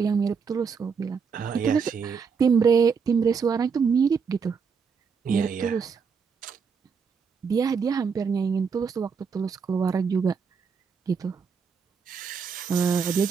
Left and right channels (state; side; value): quieter; left; 5.9 dB